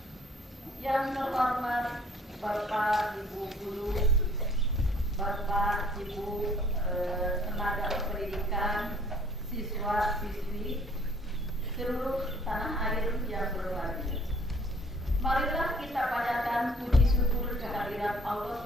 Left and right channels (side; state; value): both; normal; correlation 0.57